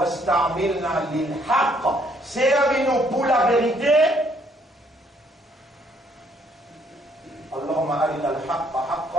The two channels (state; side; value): normal; both; correlation 0.67